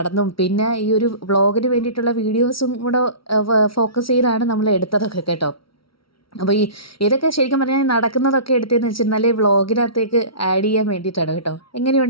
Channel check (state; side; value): late; right; 0.75 ms